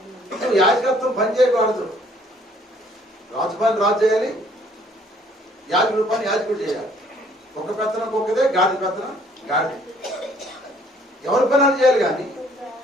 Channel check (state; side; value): normal; both; correlation 0.61